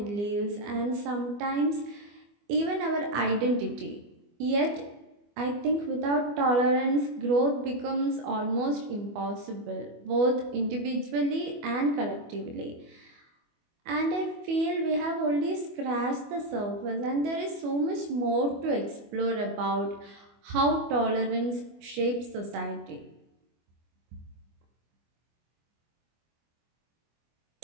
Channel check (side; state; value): left; late; 24 ms